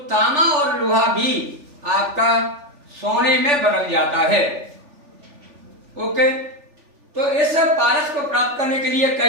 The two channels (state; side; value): late; left; 3.4 ms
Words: तांबा और लोहा भी आपका सोने में बदल जाता है। ओके, तो इस पारस को प्राप्त करने के